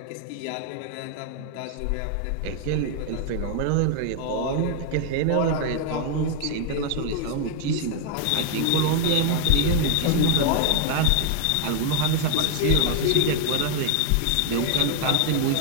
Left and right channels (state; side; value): different; both; correlation 0.00